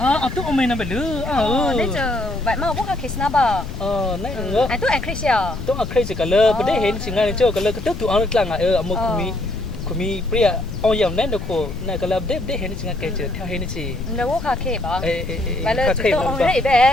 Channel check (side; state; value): left; noise; rumble, 8 dB below the sound